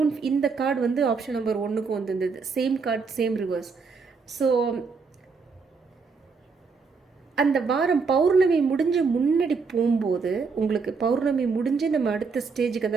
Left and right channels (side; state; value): left; quieter; 4.9 dB